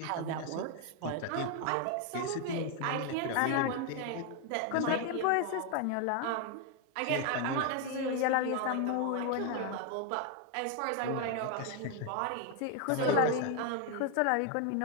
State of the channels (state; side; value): different; both; correlation 0.01